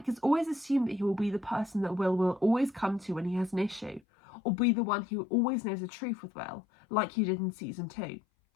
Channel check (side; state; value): right; drops out; at 4.0 s